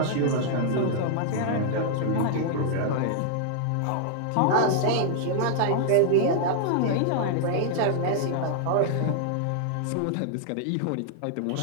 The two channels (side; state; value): both; different; correlation -0.01